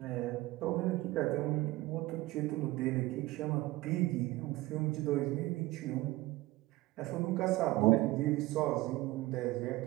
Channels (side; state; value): left; quieter; 18.9 dB